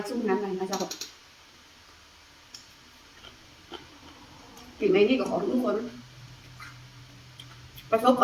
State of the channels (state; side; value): identical; both; correlation 1.00